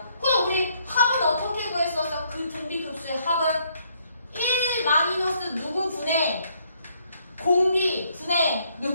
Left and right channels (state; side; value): inverted; both; correlation -0.70